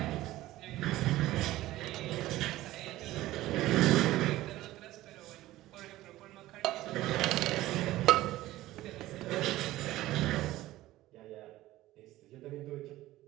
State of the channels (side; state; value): left; quieter; 16.3 dB